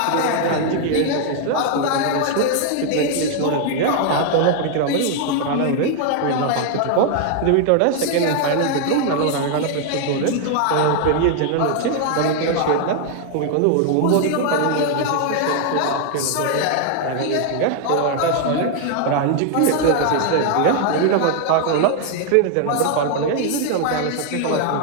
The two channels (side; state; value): both; different; correlation 0.00